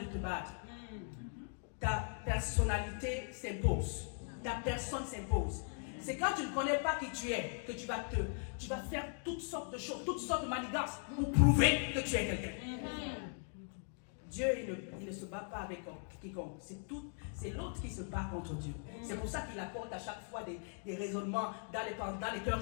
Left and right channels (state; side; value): silent; right; 52 dB below the other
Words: te battre. Ta personnalité s'impose. Ta personne s'impose. C'est quand tu ne connais pas qui tu es que tu vas faire toutes sortes de choses, toutes sortes de manigances pour prouver que tu es quelqu'un. Dieu, il ne se bat pas avec quiconque. C'est l'autre qui se bat contre Dieu. C'est pour ça qu'il apporte à chaque fois des raisonnements dans les cœurs